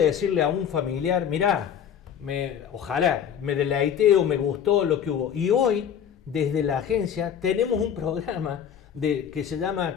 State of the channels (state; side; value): quieter; right; 8.6 dB